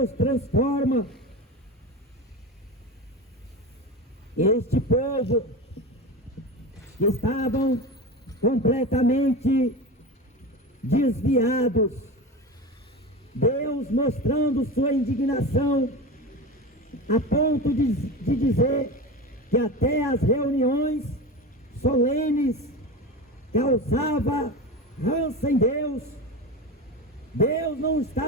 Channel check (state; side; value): normal; both; correlation 0.26